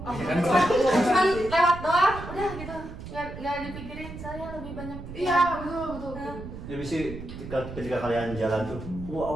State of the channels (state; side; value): noise; right; rumble, 11 dB below the sound